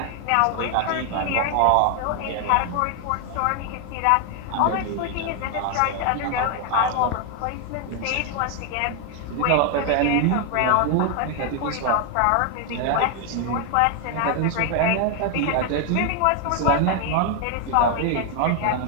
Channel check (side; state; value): both; different; correlation 0.01